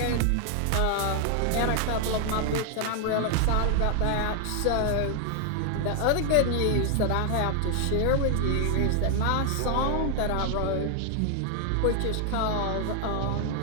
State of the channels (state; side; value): different; both; correlation 0.00